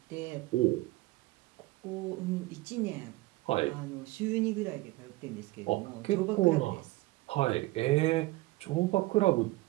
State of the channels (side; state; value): left; quieter; 19.9 dB